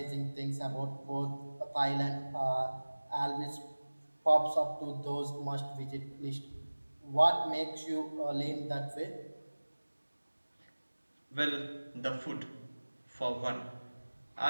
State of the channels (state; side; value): inverted; both; correlation -1.00